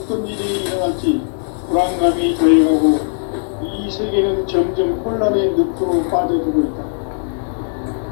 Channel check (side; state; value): right; silent; 65 dB below the other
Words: 일이 일어날지 불안감이 더해가고 이 세계는 점점 혼란의 늪으로 빠져들고 있다.